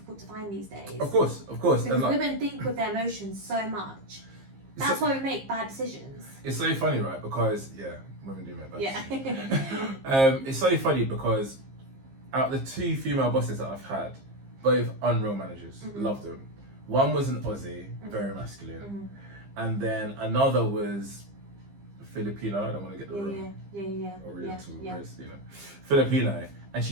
to find these days. Of course. Because women think with their emotions so much. That's why we make bad decisions. It's so funny, right? Because women do make bad decisions. Yeah. It's so funny because out of the 2 female bosses that I've had, both unreal managers, loved them. One was an Aussie, very masculine, and then another was Filipino. I don't want to get the wrong Oriental, Filipino, and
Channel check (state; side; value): late; left; 15 ms